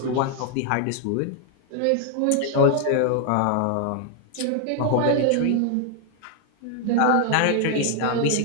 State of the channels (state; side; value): different; both; correlation 0.00